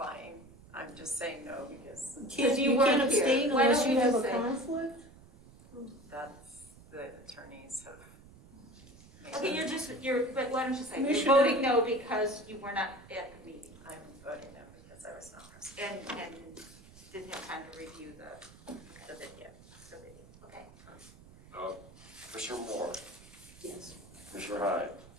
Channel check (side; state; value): right; noise; rumble, 22 dB below the sound